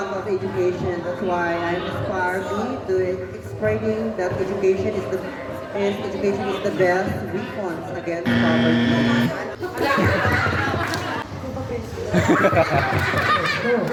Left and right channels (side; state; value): both; identical; correlation 1.00